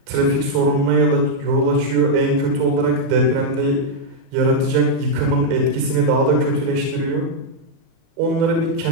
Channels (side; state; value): left; late; 38 ms